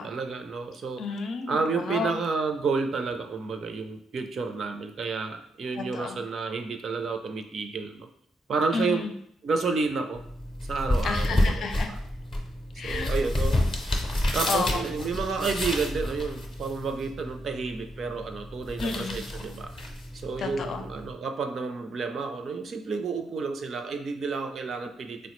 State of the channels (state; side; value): normal; both; correlation 0.79